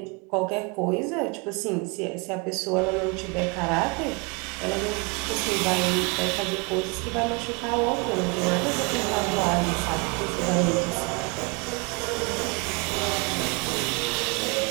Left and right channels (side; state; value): left; quieter; 29.9 dB